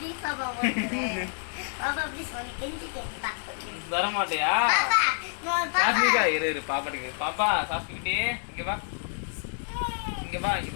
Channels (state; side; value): silent; right; digital silence